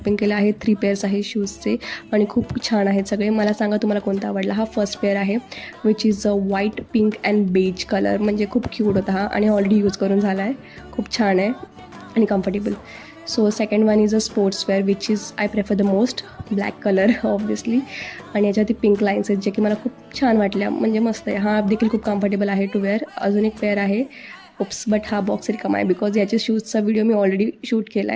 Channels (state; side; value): identical; both; correlation 1.00